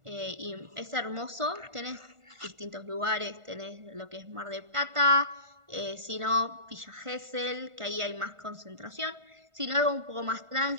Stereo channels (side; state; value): left; late; 1.5 ms